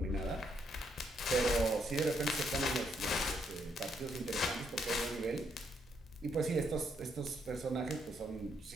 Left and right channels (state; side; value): normal; both; correlation 0.74